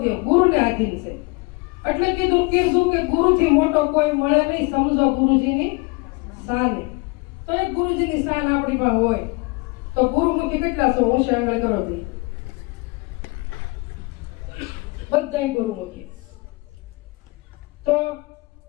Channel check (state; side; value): quieter; right; 27.0 dB